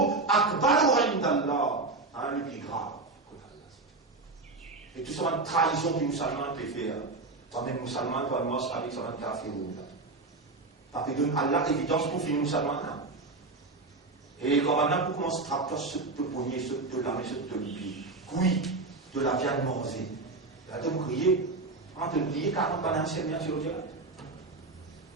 أكبر عند الله. Le plus grave. Et tout ça, une trahison du musulman te fait. Toi-même musulman, toi, moi, avec ça, un kafir. Parce que donne Allah évidence pour finir ça maintenant. Et quand maintenant pour commencer à trapper ce te pogner, ce te lamer, ce te lier, oui, de la viande mangée. Là, tu me crier, en te crier 40 bananes sur le direct.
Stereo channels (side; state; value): left; quieter; 3.5 dB